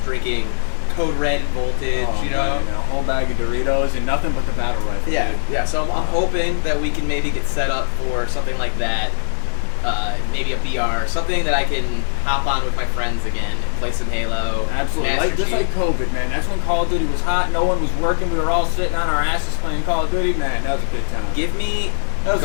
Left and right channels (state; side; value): silent; right; digital silence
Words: drinking Code Red and Voltage, Oh, you know. man, a whole bag of Doritos and nothing but the battle rifle. Yeah, dude. yeah. So I'm hoping that we can maybe get set up for something like that. Maybe a VR, something that I can hop on with my friends again and play some Halo. Absolutely. Master Just Chief. like COVID, man. That's when Call of Duty was hot. No one was working. We were all sitting on our asses playing Call of Duty. Man, that was a good time. Give me That was